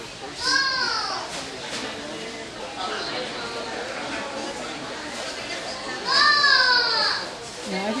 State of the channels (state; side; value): identical; both; correlation 1.00